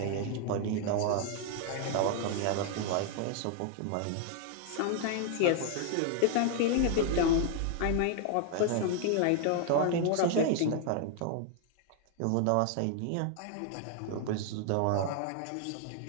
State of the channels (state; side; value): different; both; correlation 0.00